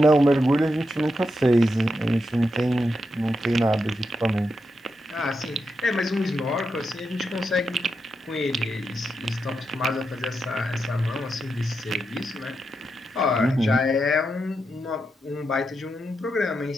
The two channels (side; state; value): both; normal; correlation 0.85